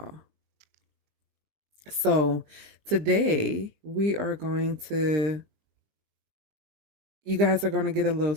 So today you guys are going to get a little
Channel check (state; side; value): late; left; 20 ms